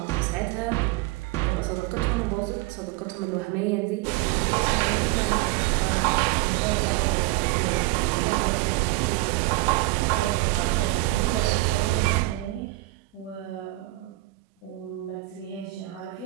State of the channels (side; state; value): left; quieter; 20.2 dB